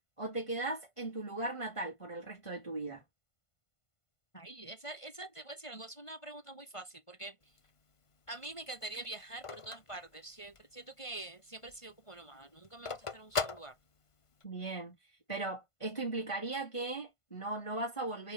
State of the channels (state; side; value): late; right; 1.5 ms